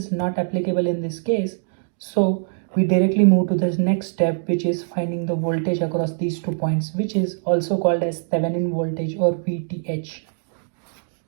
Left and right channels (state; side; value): silent; left; digital silence